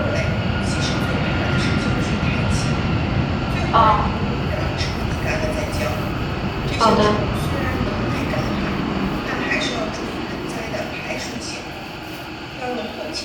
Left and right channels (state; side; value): identical; both; correlation 1.00